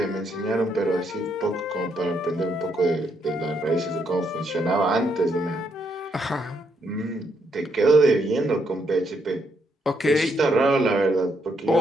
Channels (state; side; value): normal; both; correlation 0.76